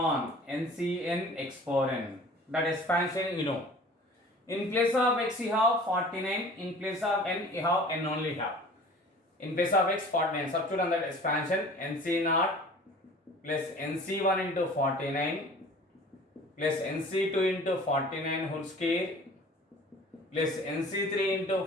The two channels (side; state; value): both; normal; correlation 0.45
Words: ncn x power n. That expansion you know. In place of x you have 49, in place of n you have n only have. In place of x 49, substitute on that expansion nc0 plus nc1 into 49 plus nc2 into 49 whole square plus nc3 into